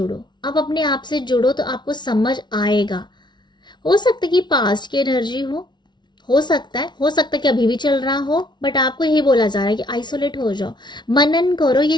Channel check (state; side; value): late; right; 0.21 ms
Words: आप अपने आप से जुड़ो तो आपको समझ आएगा। हो सकता है कि पास्ट की एनर्जी हो सकता है, कि अभी भी चल रहा हो, बट आपको यही बोला जा रहा है कि आइसोलेट हो जाओ, मनन करो। ये